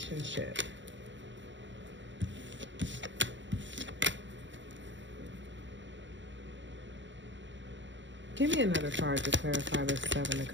Give me another card to clarify this 7 of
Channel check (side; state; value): left; late; 0.53 ms